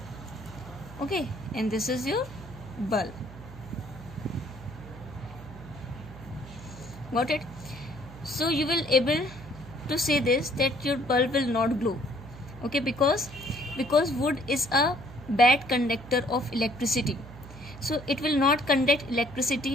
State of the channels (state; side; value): noise; right; hum, 15 dB below the sound